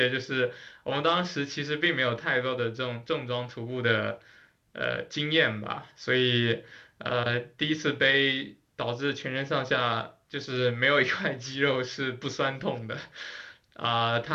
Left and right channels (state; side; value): identical; both; correlation 1.00